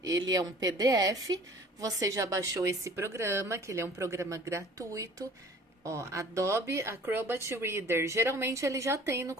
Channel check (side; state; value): both; normal; correlation 0.49